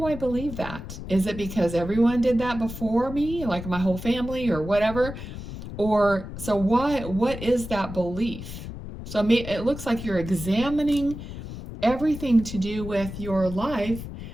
I believe that? Is it because everyone did that before me, like my whole family or whatever? Or so what is that belief? So it looks like you're examining everything to do with your life,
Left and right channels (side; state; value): left; noise; rumble, 10 dB below the sound